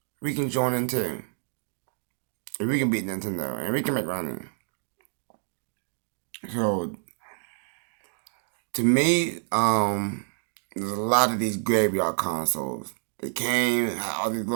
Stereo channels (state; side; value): silent; left; 59 dB below the other